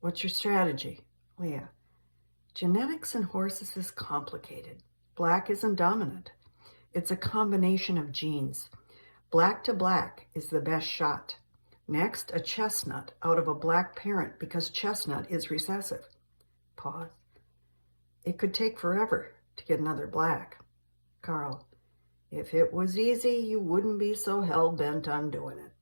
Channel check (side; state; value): both; inverted; correlation -1.00